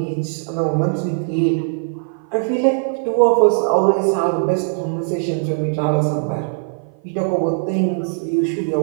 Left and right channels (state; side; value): silent; left; 55 dB below the other